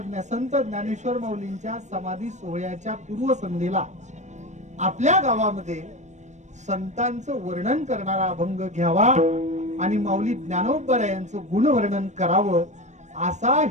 संत ज्ञानेश्वर माऊलींच्या समाधी सोहळ्याच्या पूर्वसंध्येला आपल्या गावामध्ये संतांचं वर्णन करणारा अभंग घ्यावा आणि माऊली ज्ञानोबरायांचं गुणवर्णन करावं असा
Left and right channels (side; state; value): left; late; 0.34 ms